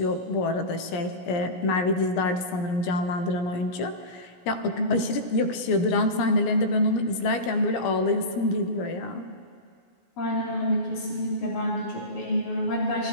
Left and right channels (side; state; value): right; late; 17 ms